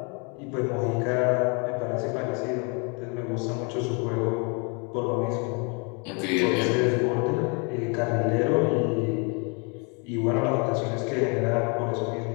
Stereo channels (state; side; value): quieter; right; 34.1 dB